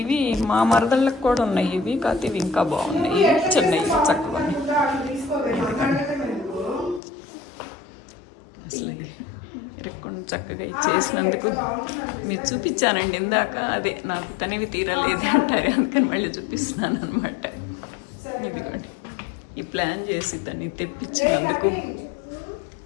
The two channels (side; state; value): right; drops out; at 7.0 s